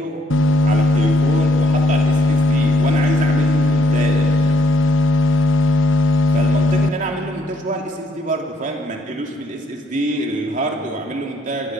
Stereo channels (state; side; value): normal; both; correlation 0.70